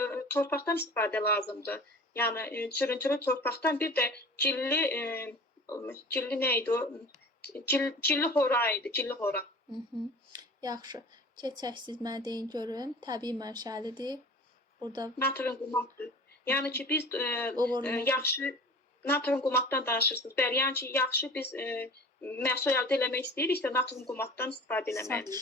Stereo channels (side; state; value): both; normal; correlation 0.40